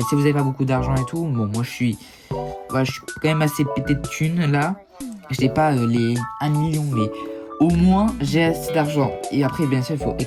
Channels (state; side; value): identical; both; correlation 1.00